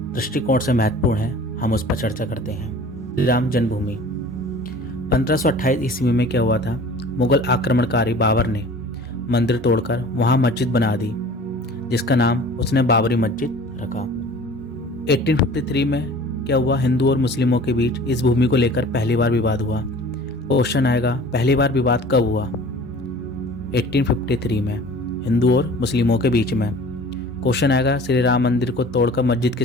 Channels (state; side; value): normal; both; correlation 0.45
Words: दृष्टिकोण से महत्वपूर्ण है, हम उस पर चर्चा करते हैं। श्री राम जन्मभूमि 1528 ईस्वी में क्या हुआ था? मुगल आक्रमणकारी बाबर ने मंदिर तोड़कर वहां मस्जिद बना दी, जिसका नाम उसने बाबरी मस्जिद रखा। 1853 में क्या हुआ? हिंदू और मुस्लिमों के बीच इस भूमि को लेकर पहली बार विवाद हुआ। क्वेश्चन आएगा, पहली बार विवाद कब हुआ? 1853 में हिंदू और मुस्लिमों के बीच में। क्वेश्चन आएगा, श्री राम मंदिर को तोड़कर मस्जिद